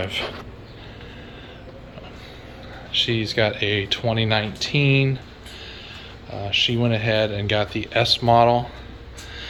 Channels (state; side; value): identical; both; correlation 1.00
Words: She's got a 2019. She went ahead and got the S model.